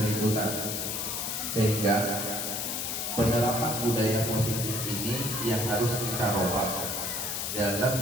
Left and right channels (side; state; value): left; noise; hiss, 2 dB below the sound